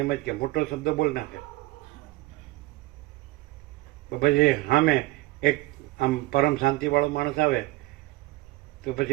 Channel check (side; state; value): left; quieter; 19.9 dB